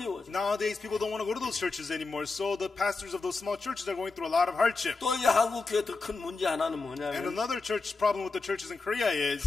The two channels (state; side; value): quieter; right; 3.9 dB